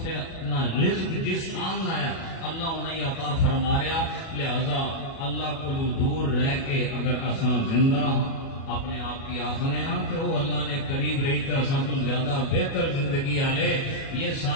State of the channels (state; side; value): late; right; 37 ms